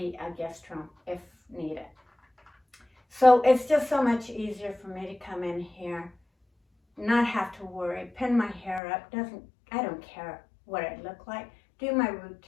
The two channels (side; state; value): right; drops out; at 8.8 s